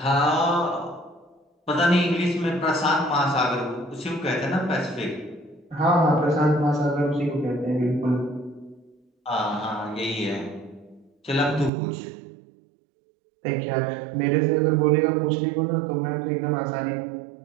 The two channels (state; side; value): drops out; left; at 11.7 s